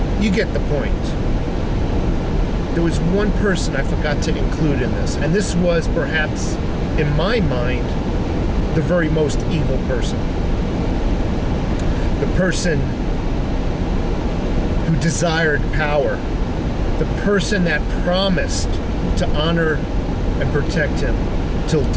You get the point. There was one person I forgot to include in this, and this was perhaps, in my mind, the very most evil person. The person who desired power, the person that promised to honor and protect him till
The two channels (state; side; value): identical; both; correlation 1.00